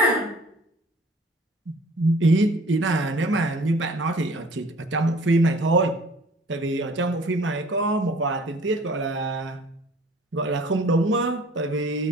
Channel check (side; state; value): both; normal; correlation 0.51